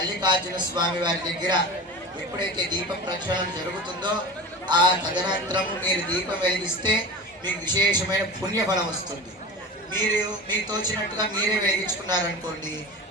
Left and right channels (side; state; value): both; normal; correlation 0.32